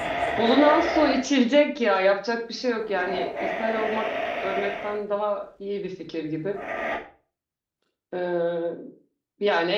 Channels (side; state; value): both; identical; correlation 1.00